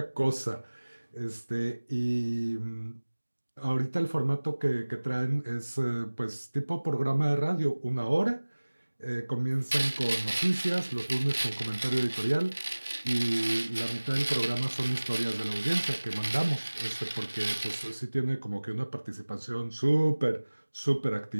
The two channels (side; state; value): both; inverted; correlation -1.00